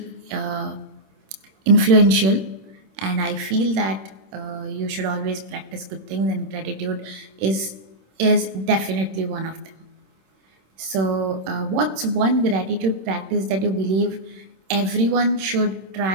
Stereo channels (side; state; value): left; late; 26 ms